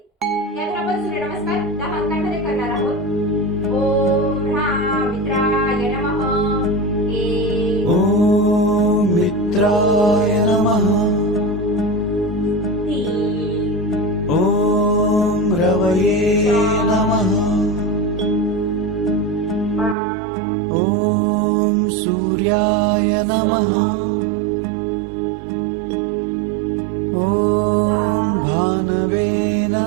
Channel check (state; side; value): drops out; left; at 20.0 s